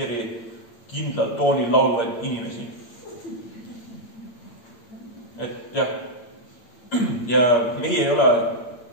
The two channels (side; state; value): right; late; 8.8 ms